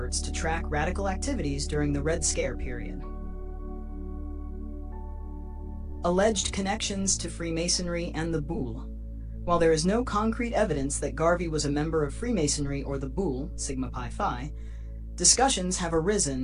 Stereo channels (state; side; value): identical; both; correlation 1.00